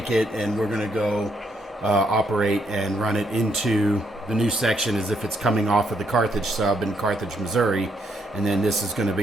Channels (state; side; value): normal; both; correlation 0.75